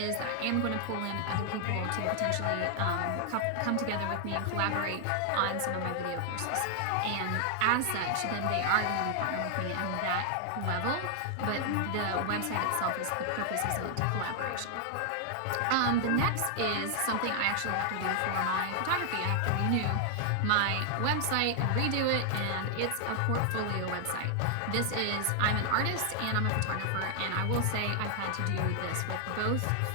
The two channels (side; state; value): both; different; correlation 0.00